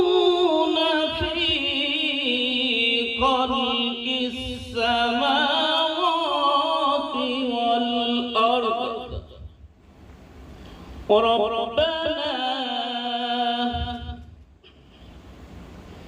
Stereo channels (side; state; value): both; identical; correlation 1.00